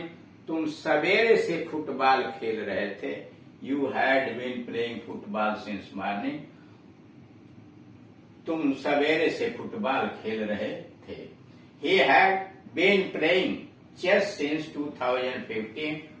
तुम सवेरे से फुटबॉल खेल रहे थे। You had been playing football since morning. तुम सवेरे से फुटबॉल खेल रहे थे। He had been playing chess since 2015।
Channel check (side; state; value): both; identical; correlation 1.00